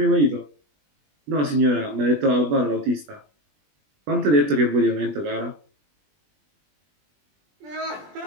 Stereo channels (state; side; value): late; left; 20 ms